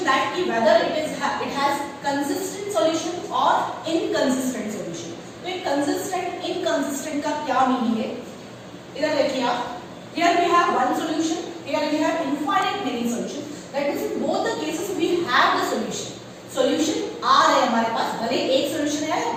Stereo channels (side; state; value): both; identical; correlation 1.00